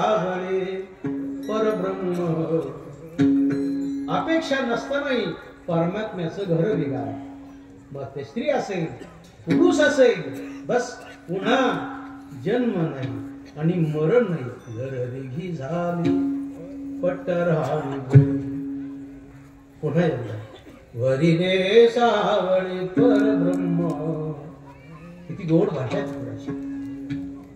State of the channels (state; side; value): identical; both; correlation 1.00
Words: परब्रह्म. अपेक्षा नसतानाही परमात्म्याचं घर बिघा. मग ते स्त्री असेल पुरुष असेल बस पुन्हा जन्म नाही आणि मरण नाही. घर रेघी झाली पट्टराणी बळे. पुन्हा एकदा वरी रे सावळे परब्रह्म. किती गोड भाषा आहे.